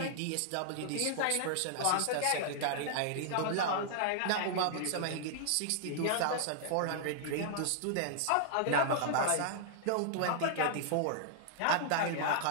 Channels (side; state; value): both; different; correlation -0.01